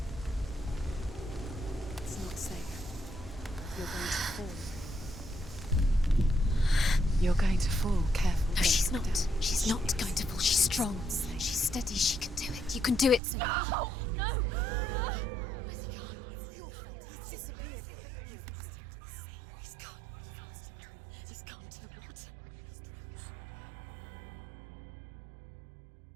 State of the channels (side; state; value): left; drops out; at 13.2 s